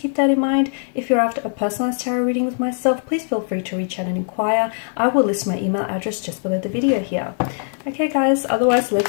keep that in mind. If you're after a personalized tarot reading with myself, please feel free to reach out and inquire. I will list my email address just below the video here. Okay, guys, otherwise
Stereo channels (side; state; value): right; silent; digital silence